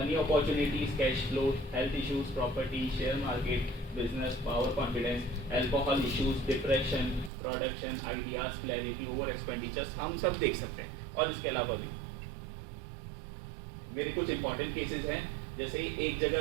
opportunities, cash flow, health issues, property, share market, business, power, confidence, alcohol issues, depression, production, ideas, clarity, over expenditures, हम सब देख सकते हैं। और इसके अलावा भी मेरे कुछ इंपॉर्टेंट केसेस हैं, जैसे एक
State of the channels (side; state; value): left; drops out; at 7.3 s